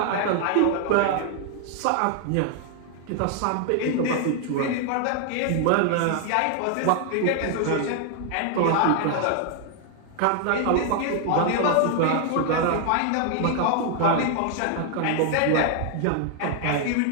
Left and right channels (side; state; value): both; different; correlation 0.00